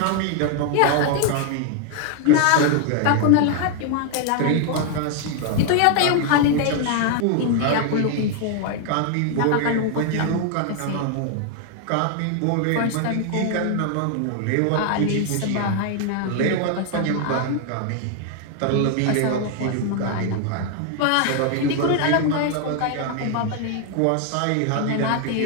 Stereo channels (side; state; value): both; different; correlation 0.00